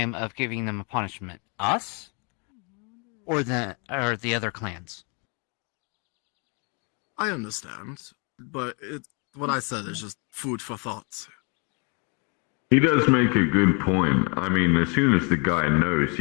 of giving them a punishment? Us? Or the other clans? I understand, but what I said is just food for thought. He does make a good point. I mean, as soon as the guy knows,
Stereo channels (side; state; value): right; quieter; 34.5 dB